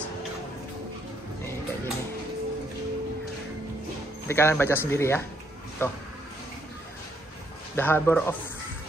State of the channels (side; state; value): both; normal; correlation 0.72